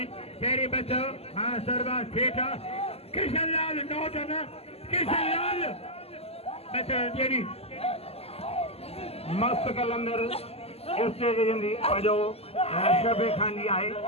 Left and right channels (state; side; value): late; right; 0.29 ms